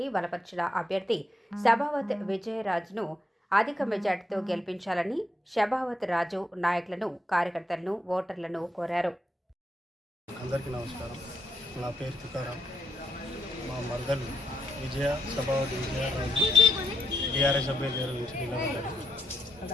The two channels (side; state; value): both; normal; correlation 0.81